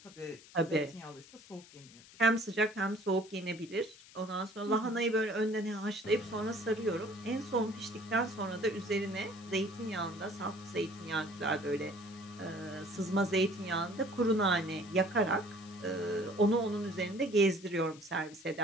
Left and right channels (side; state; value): left; noise; hiss, 21 dB below the sound